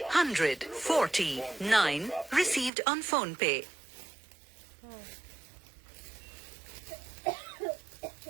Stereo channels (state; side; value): drops out; left; at 2.7 s